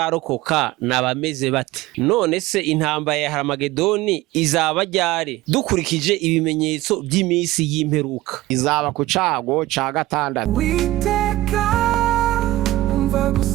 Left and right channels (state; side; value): quieter; left; 17.1 dB